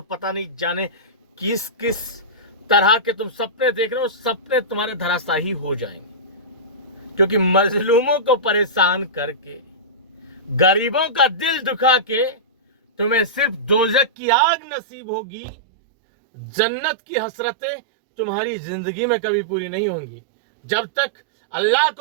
पता नहीं जाने किस किस तरह के तुम सपने देख रहे हो, सपने तुम्हारे धराशायी हो जाएंगे। क्योंकि मजलूमों को परेशान करके, गरीबों का दिल दुखा के तुम्हें सिर्फ दोजख की आग नसीब होगी। जन्नत की हसरतें तुम्हारी जिंदगी में कभी पूरी नहीं होंगी जब तक अल्लाह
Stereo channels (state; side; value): drops out; left; at 14.1 s